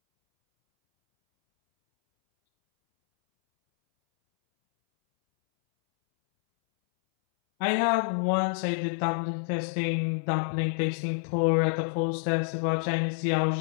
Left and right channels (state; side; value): silent; right; 60 dB below the other